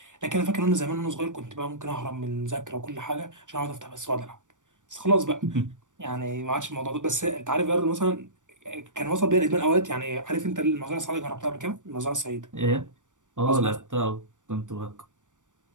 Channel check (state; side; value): late; left; 0.86 ms